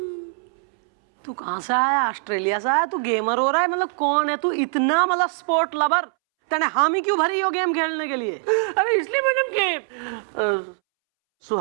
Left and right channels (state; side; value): silent; left; 64 dB below the other